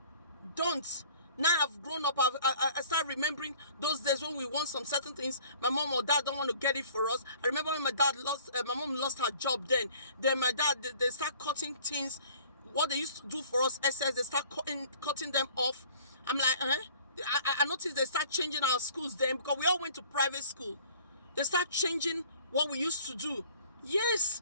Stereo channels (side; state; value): both; inverted; correlation -0.51